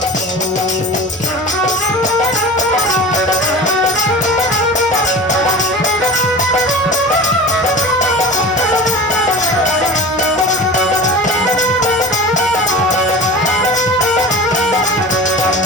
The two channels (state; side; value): normal; both; correlation 0.34